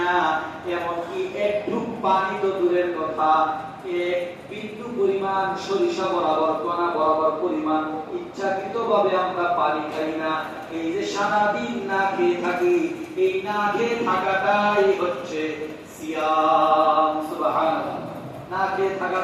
এমনকি এক ঢুক পানি তো দূরের কথা, এক বিন্দু পরিমাণ সরিষা বরাবর কণা বরাবর পরিমাণ ইচ্ছাকৃতভাবে আমরা পানি খাই না। এই যে সারাদিন না খেয়ে থাকি, এই না খেয়ে থাকাটাই হচ্ছে সিয়াম। সুবহানাল্লাহ। না খেয়ে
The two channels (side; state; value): both; identical; correlation 1.00